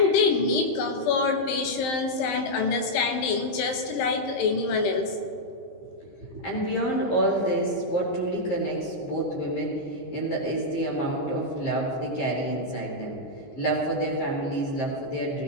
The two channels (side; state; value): right; late; 15 ms